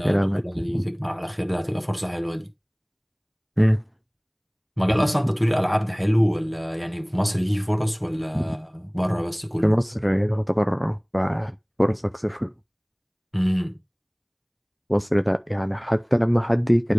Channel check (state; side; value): identical; both; correlation 1.00